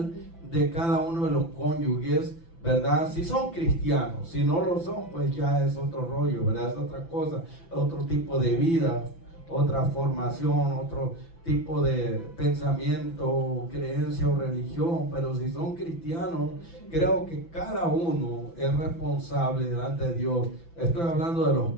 de cada uno de los cónyuges, ¿verdad? Si son cristianos, si no lo son, pues ya es otro rollo, ¿verdad? Es otra cosa, otro tipo de vida, otra formación, otro tipo de pensamiento, creencia o religión. Pero si son cristianos, creo que cada uno es responsable delante de Dios. Estoy hablando de los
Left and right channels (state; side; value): late; right; 5.9 ms